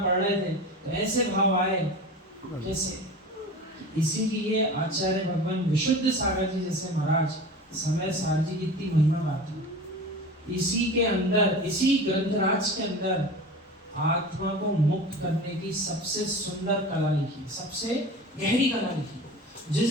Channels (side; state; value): both; normal; correlation 0.34